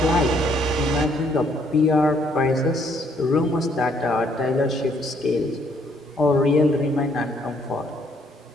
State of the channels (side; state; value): both; normal; correlation 0.67